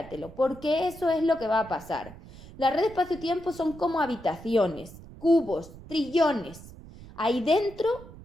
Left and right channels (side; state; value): right; noise; rumble, 17 dB below the sound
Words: porque eso es lo que va a pasar. La red espacio-tiempo son como habitaciones, cubos, trillones. Ahí dentro